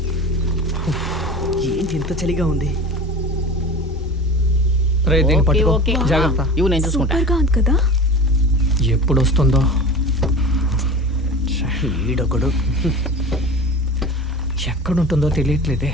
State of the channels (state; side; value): normal; both; correlation 0.35